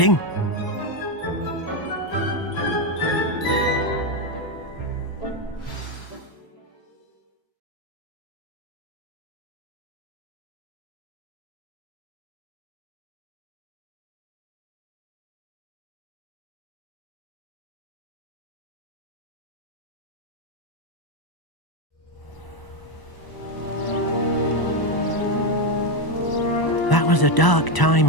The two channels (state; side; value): late; right; 1.0 ms